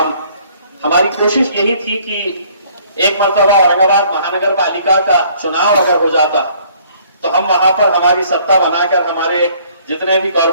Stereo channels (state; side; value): inverted; both; correlation -0.59